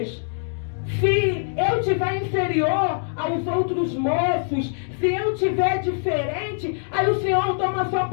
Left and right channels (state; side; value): silent; right; 63 dB below the other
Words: se eu eu tiver inferior aos outros moços, se eu tiver diferente, aí o Senhor toma a sua